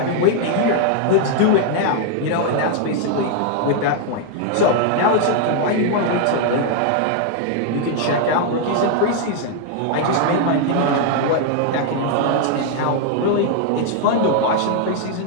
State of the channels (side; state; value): both; different; correlation 0.00